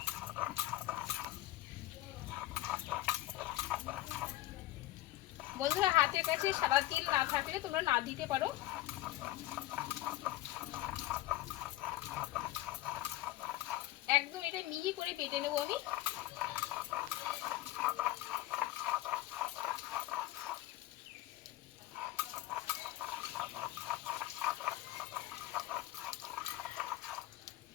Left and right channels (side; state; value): right; quieter; 15.9 dB